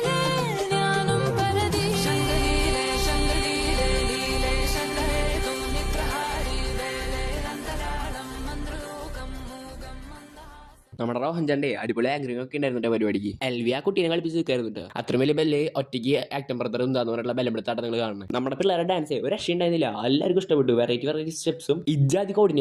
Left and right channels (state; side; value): identical; both; correlation 1.00